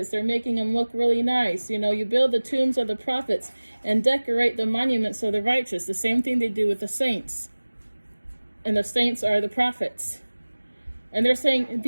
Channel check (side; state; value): both; inverted; correlation -1.00